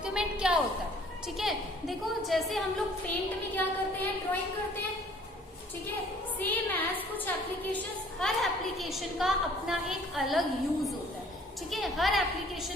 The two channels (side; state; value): both; normal; correlation 0.55